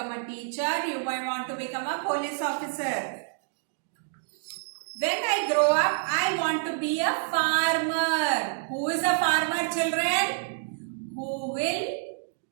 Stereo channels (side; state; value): left; silent; digital silence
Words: a teacher, you may want to become a police officer. When I grow up, I want to be a farmer. Who is a farmer, children? Who will